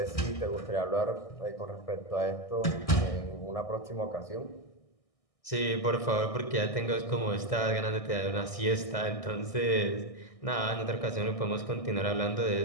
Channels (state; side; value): late; right; 1.6 ms